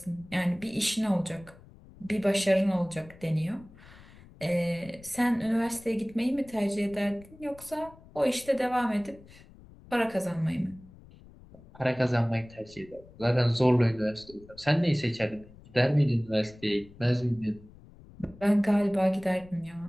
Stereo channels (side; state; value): left; noise; rumble, 22 dB below the sound